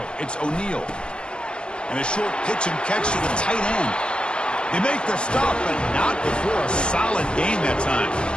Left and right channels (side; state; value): right; late; 0.054 ms